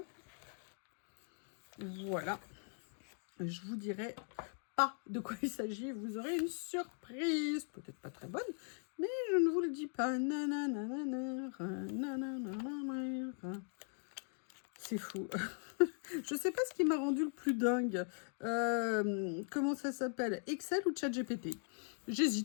Voilà. Je vous dirai pas de quoi il s'agit, vous aurez une surprise. Peut-être pas très bonne, mais je ne vous le dis pas. C'est fou. Je sais pas ce qui m'a rendu le plus dingue. Comment ça s'appelle? Excel ou ChatGPT?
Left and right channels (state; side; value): silent; right; 51 dB below the other